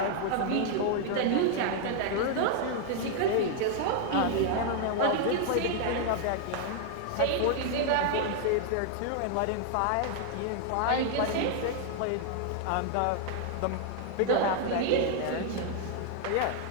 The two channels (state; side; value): different; both; correlation 0.00